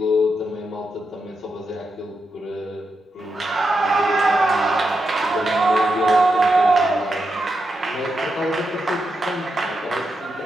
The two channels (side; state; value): both; normal; correlation 0.86